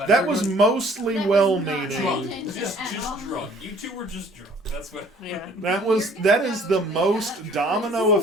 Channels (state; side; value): normal; both; correlation 0.55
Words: That was mostly That was not well-meaning. intention Just at all. drunk. You two were just drunk. That's what. Yeah. That is the most domino